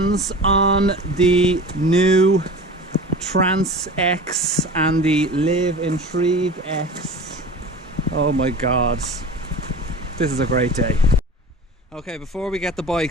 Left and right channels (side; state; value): both; normal; correlation 0.36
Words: on the new Trans X and the Live Intrigue X. Oh my god, this is a great day. Okay, before we get the